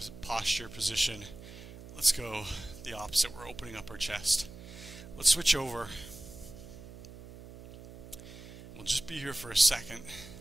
posture position. Let's go the opposite. We're opening up our chest. Let's switch over. We'll just be here for a second,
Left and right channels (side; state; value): right; noise; hum, 15 dB below the sound